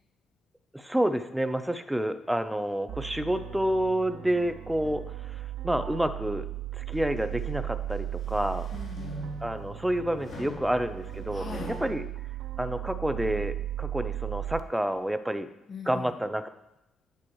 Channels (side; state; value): both; normal; correlation 0.90